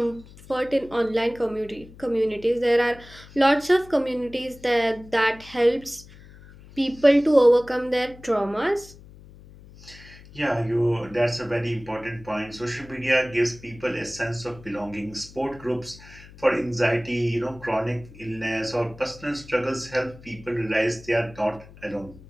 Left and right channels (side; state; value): left; noise; hum, 20 dB below the sound